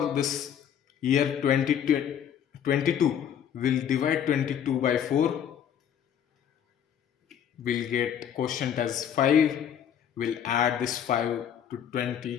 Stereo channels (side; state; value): right; quieter; 9.0 dB